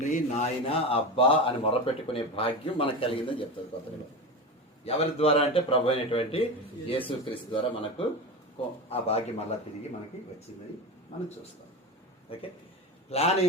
నాయన అబ్బా అని మొరపెట్టుకునే భాగ్యం మనకు కలిగిందని చెప్తుంది కొత్త నిబంధన. ఎవరి ద్వారా అంటే ప్రభు అయినటువంటి యేసుక్రీస్తు ద్వారా మనకు ఆ భాగ్యం మళ్ళా తిరిగి మనకి వచ్చిందని మనం చూస్తాం. ఓకే, ప్లాన్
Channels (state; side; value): normal; both; correlation 0.23